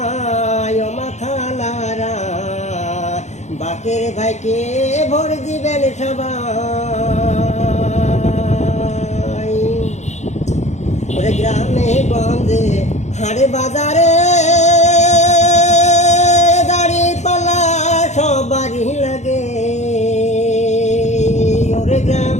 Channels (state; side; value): late; right; 0.33 ms